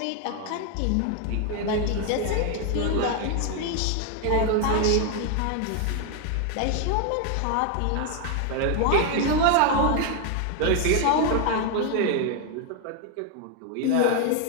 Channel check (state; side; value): different; both; correlation 0.01